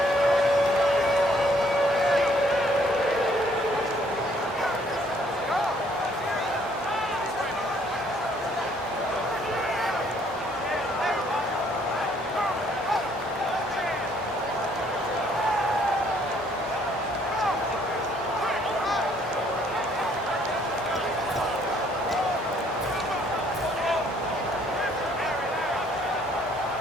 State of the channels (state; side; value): normal; both; correlation 0.64